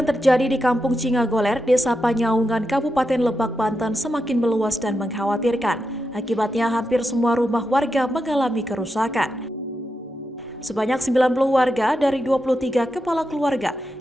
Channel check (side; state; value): both; normal; correlation 0.87